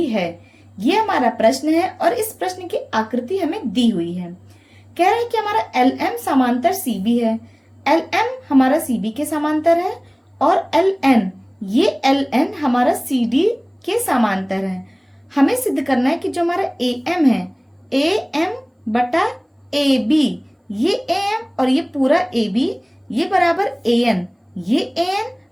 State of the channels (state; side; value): identical; both; correlation 1.00